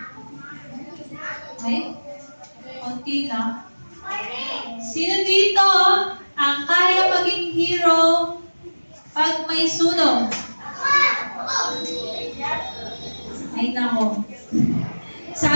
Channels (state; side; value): inverted; both; correlation -1.00